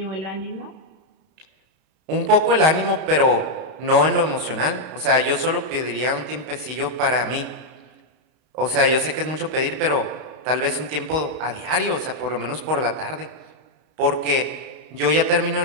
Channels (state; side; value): late; left; 32 ms